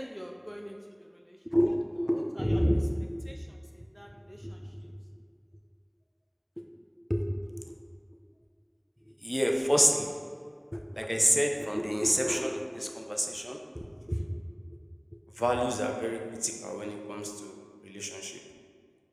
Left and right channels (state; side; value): identical; both; correlation 1.00